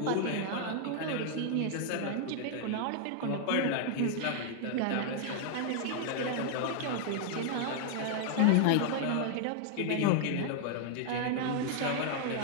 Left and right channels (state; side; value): different; both; correlation 0.00